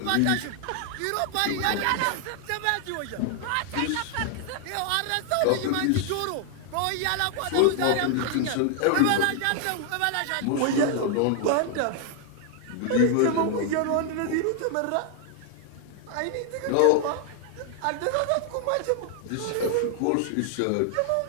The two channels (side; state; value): both; different; correlation 0.00